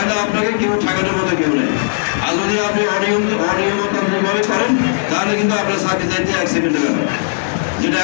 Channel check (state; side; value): silent; right; 56 dB below the other